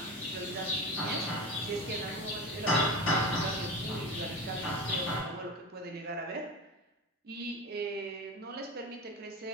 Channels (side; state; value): both; normal; correlation 0.27